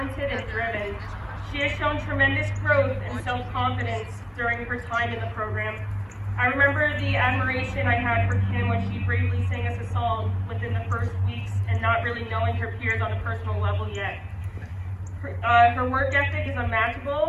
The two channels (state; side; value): identical; both; correlation 1.00